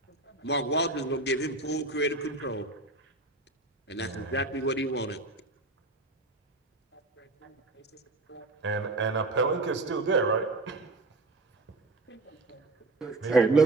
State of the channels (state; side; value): quieter; left; 3.0 dB